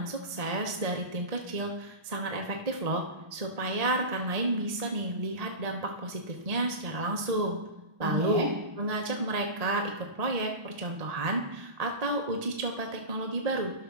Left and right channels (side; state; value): left; late; 1.7 ms